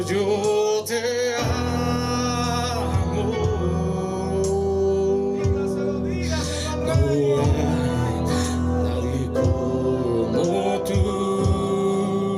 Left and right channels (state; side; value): identical; both; correlation 1.00